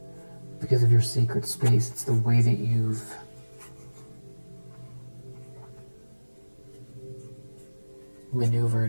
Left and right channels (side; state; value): both; inverted; correlation -1.00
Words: Because of your sacred space, it's the way that you've